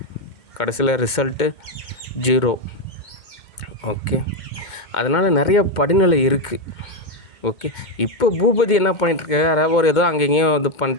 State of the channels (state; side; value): late; right; 2.1 ms